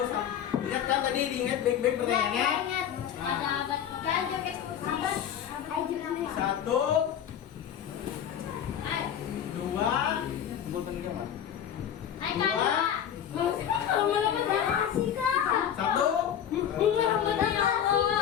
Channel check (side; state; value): right; quieter; 9.4 dB